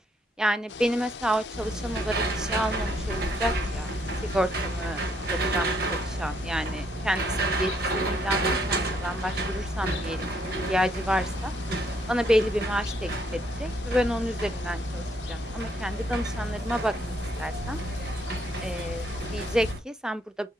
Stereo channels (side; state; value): both; normal; correlation 0.71